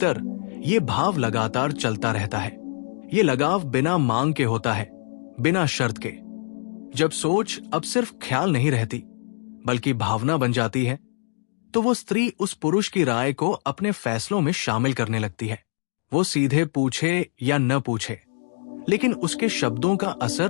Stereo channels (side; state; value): right; silent; digital silence